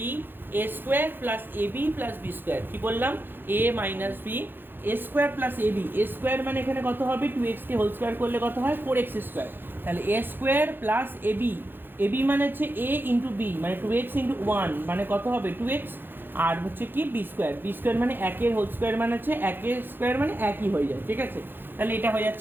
a² + ab + b², কি বললাম a - b a square plus a b, a square মানে এখানে কত হবে, 2x-কে হোল স্কোয়ার করলে কত হয় 4x স্কোয়ার, তাহলে এ square plus a b, A B মানে হচ্ছে এ ইন্টু বি মানে 2x ইন্টু 1 মানে কত হবে 2x, আর হচ্ছে কি বি স্কোয়ার, বি স্কোয়ার মানে একের হোল স্কোয়ার মানে হচ্ছে একের স্কোয়ার মানে একই হয়ে যায়, ঠিক আছে। তাহলে এটা হয়ে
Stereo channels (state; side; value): late; left; 0.098 ms